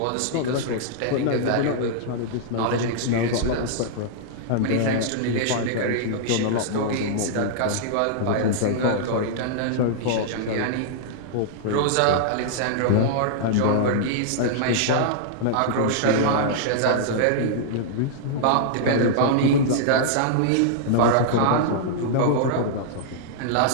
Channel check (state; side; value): different; both; correlation -0.02